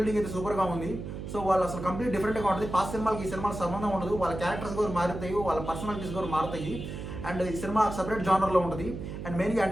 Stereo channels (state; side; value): noise; right; hum, 7 dB below the sound